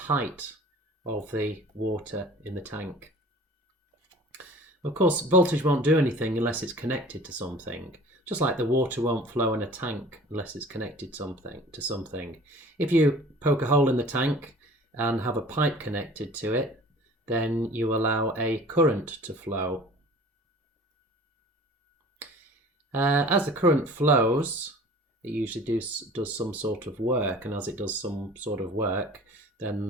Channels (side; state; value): both; normal; correlation 0.45